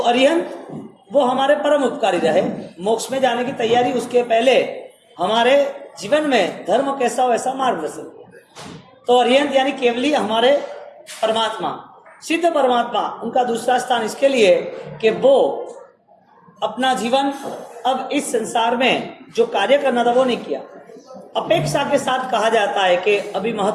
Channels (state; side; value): identical; both; correlation 1.00